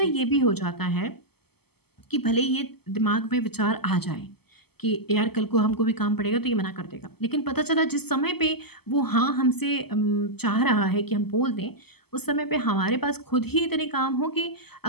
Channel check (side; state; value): right; late; 0.96 ms